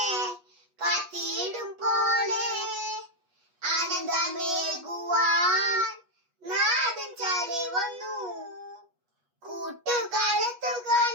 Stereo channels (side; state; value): left; late; 8.3 ms